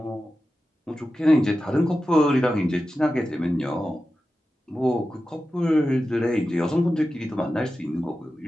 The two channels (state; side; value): normal; both; correlation 0.93